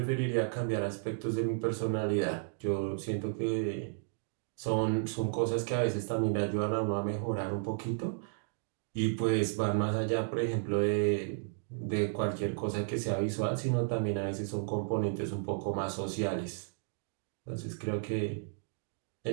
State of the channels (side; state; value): left; silent; digital silence